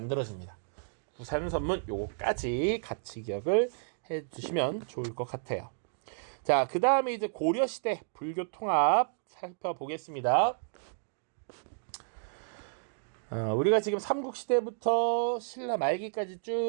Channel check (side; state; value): left; silent; digital silence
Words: 구산 선문 요거까지 같이 기억을 해주시면 좋을 것 같아요. 자, 그 다음에 이제 고려시대 불교 통합 살펴보겠습니다. 우리가 지금 삼국시대부터 신라 말기까지